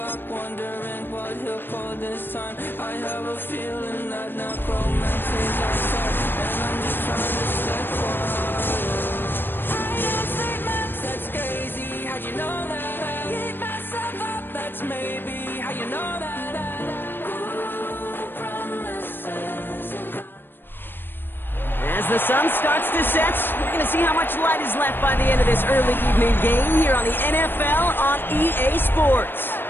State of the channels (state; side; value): late; right; 0.097 ms